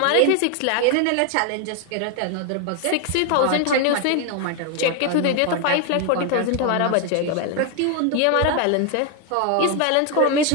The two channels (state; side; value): different; both; correlation 0.01